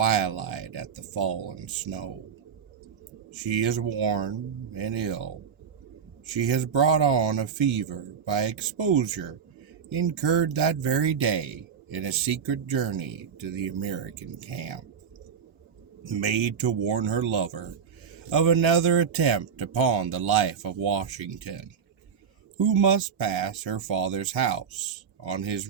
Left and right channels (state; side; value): quieter; left; 7.0 dB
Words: at the fallen snow. She is worn and ill. She has brought on a fever by exposure incurred that very day in a secret journey to the American camp, made to warn her lover of another attempt upon the life of Washington, who must pass her father's house on his